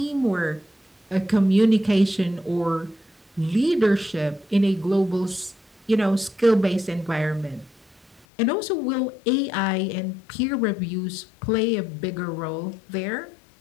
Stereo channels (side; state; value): right; drops out; at 8.2 s